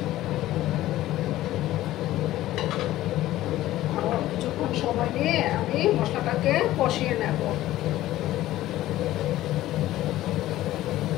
আর কিছুক্ষণ সময় নিয়ে আমি মশলাটাকে কষিয়ে নেব।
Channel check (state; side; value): quieter; right; 15.0 dB